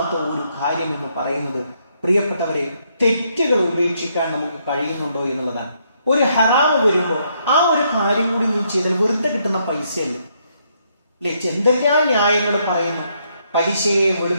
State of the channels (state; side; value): inverted; both; correlation -0.74